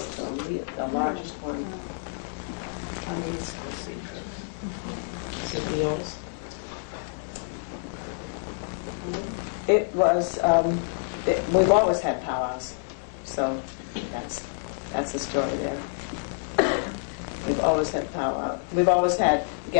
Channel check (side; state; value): right; silent; digital silence